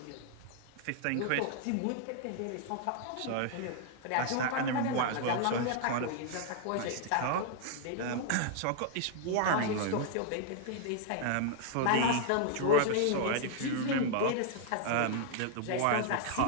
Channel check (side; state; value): both; different; correlation 0.00